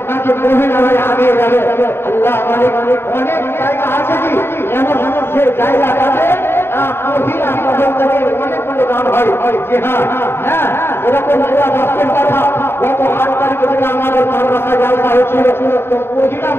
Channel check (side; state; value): right; late; 0.11 ms